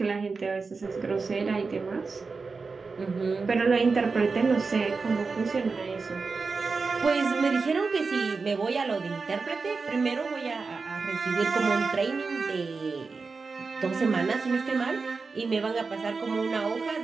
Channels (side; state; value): left; quieter; 4.4 dB